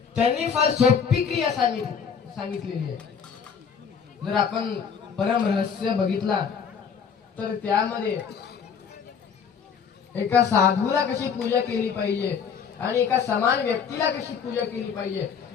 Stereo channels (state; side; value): quieter; right; 6.8 dB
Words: त्यांनी फार सोपी क्रिया सांगितलेली आहे जर आपण परम रहस्य बघितला तर त्यामध्ये एका साधूला कशी पूजा केली पाहिजे आणि एका समान व्यक्तीला कशी पूजा केली पाहिजे